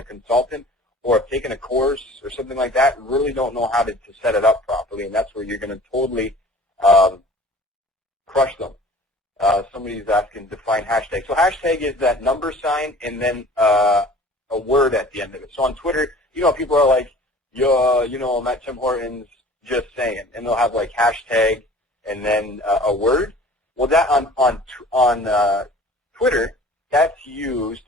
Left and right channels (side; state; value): both; normal; correlation 0.46